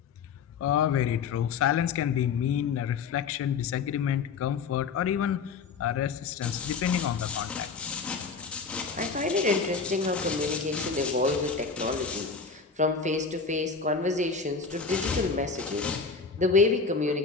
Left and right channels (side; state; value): right; quieter; 5.2 dB